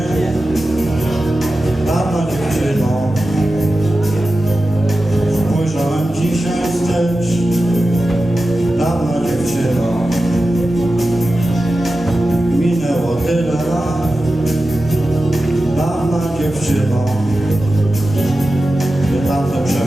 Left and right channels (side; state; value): both; normal; correlation 0.93